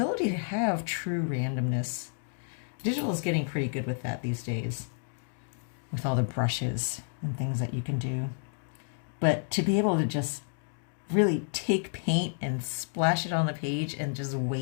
to have true randomness. Digital is getting pretty good with that these days, with all the brushes and things that you can do. But to be able to just really take paint and splash it on the page and just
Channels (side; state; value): right; silent; digital silence